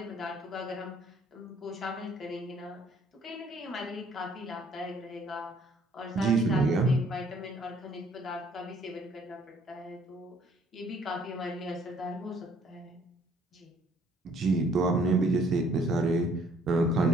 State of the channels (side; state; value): both; normal; correlation 0.61